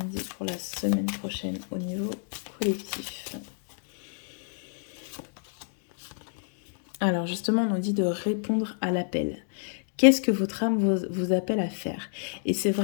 dit pour la semaine prochaine au niveau collectif? Alors justement, on nous dit de répondre à l'appel. Qu'est-ce que votre âme vous appelle à faire? Et c'est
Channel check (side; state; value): right; silent; digital silence